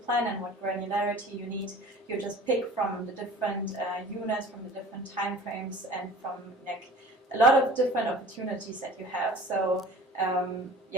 and what granularity you need, you just pick from the different units, from the different time frames, and from like a lot of different opportunities that you have. So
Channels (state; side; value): normal; both; correlation 0.43